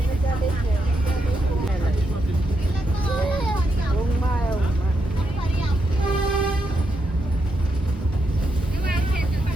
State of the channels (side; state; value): both; normal; correlation 0.82